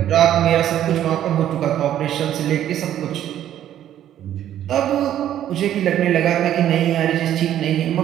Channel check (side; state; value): left; quieter; 11.4 dB